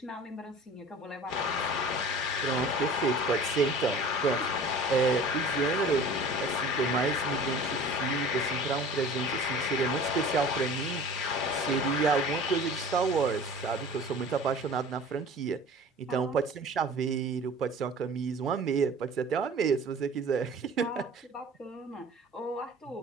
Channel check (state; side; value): normal; both; correlation 0.42